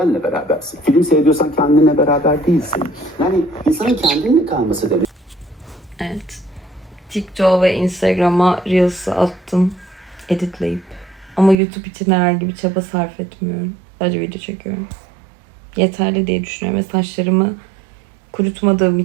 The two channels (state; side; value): drops out; left; at 11.6 s